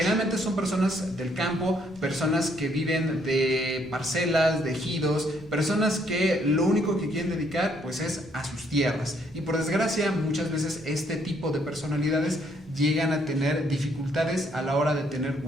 son personas del campo, personas que viven de parcelas, de ejidos, personas que lo único que quieren dedicar es a sus tierras. Y por desgracia, muchas veces este tipo de personalidades llegan a tener dificultades a la hora de tener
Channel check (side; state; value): both; normal; correlation 0.69